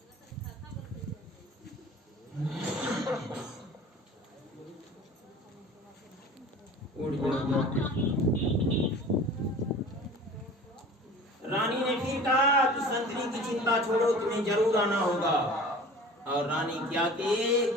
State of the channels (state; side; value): normal; both; correlation 0.41